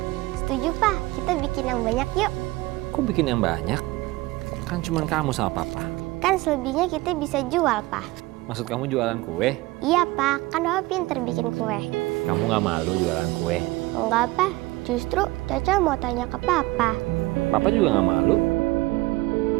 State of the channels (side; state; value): left; quieter; 20.5 dB